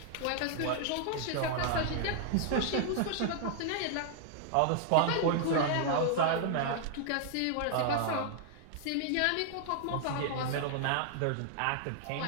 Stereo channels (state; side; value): different; both; correlation 0.00